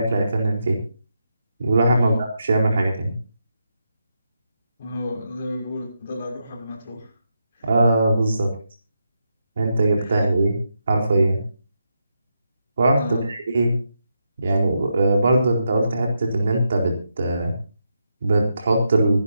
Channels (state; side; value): inverted; both; correlation -0.84